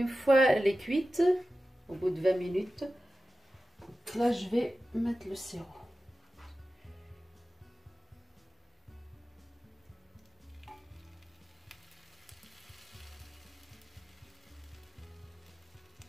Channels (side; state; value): both; normal; correlation 0.94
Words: fois elle est cuite, au bout de 20 minutes, là je vais mettre le sirop.